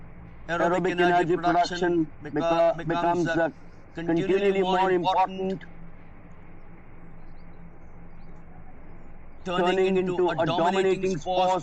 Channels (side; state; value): both; identical; correlation 1.00